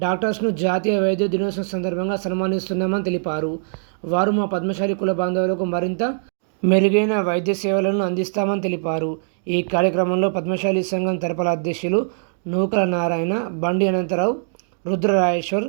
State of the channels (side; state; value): left; silent; digital silence